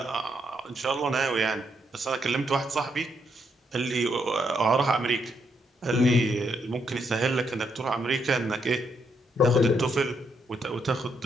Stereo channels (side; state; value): both; normal; correlation 0.77